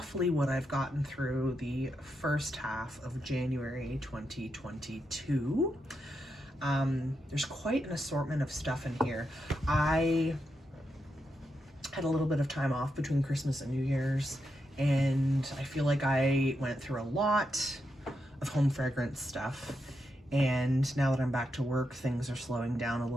what I've gotten through the first half of January 2022. There's quite an assortment of stuff in here. I had a little bit of time off between Christmas and New Year's, and I feel like I went through a lot of home fragrance stuff, and now that I'm back to work, things are slowing down a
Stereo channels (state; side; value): normal; both; correlation 0.84